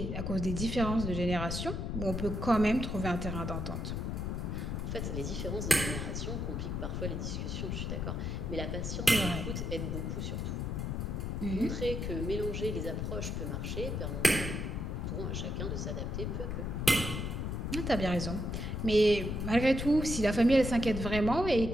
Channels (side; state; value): left; noise; rumble, 2 dB below the sound